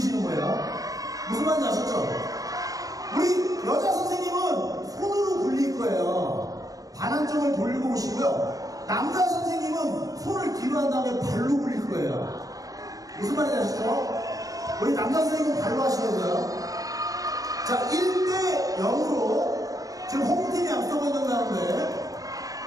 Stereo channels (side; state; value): left; late; 0.17 ms